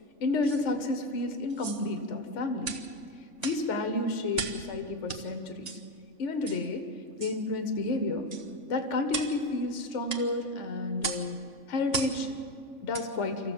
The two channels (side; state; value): right; late; 3.5 ms